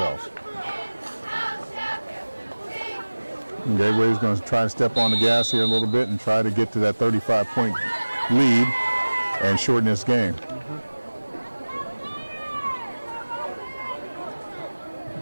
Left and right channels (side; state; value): both; inverted; correlation -1.00